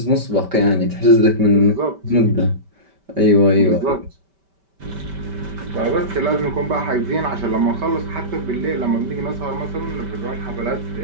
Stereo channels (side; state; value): left; late; 5.1 ms